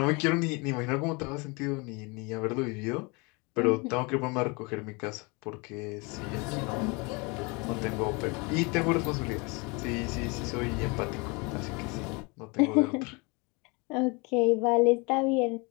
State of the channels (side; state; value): right; quieter; 28.8 dB